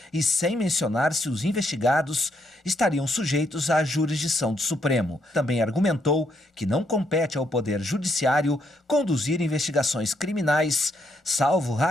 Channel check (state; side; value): normal; both; correlation 0.75